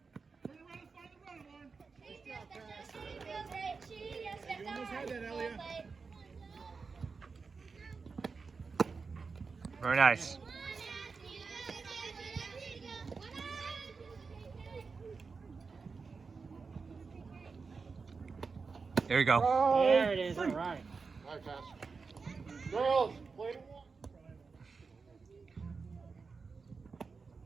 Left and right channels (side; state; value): left; quieter; 4.8 dB